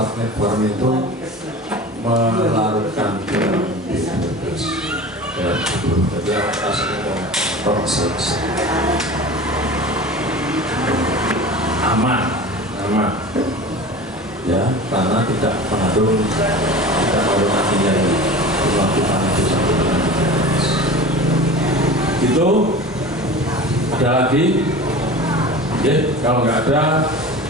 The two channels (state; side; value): normal; both; correlation 0.36